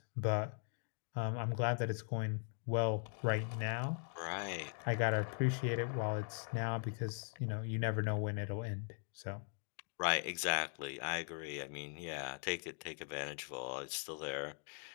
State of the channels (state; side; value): silent; right; 51 dB below the other